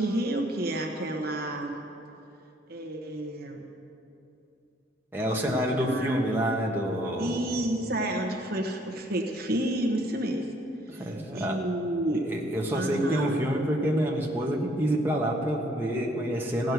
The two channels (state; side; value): normal; both; correlation 0.63